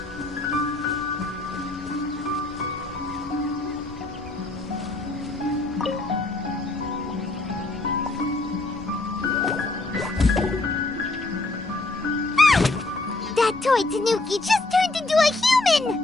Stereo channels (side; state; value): right; quieter; 3.0 dB